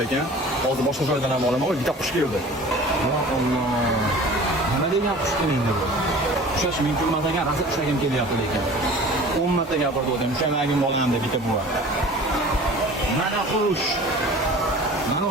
ekan. Hozir boshqa joydan ham olaman. Oy, bitta qush keldi. Ya Alloh. Nima degan qush endi bu? Ushlash mumkin emas ekan, rosa ushlagim kelyapti lekin. 10 marta gapirdim, ushamagim bo'lam deb bitta buva. Mana qush. Mana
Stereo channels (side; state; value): both; normal; correlation 0.43